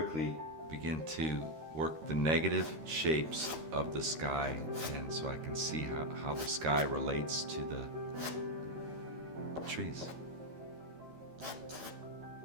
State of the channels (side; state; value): left; late; 13 ms